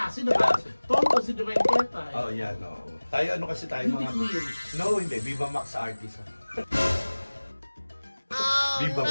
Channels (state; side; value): inverted; both; correlation -1.00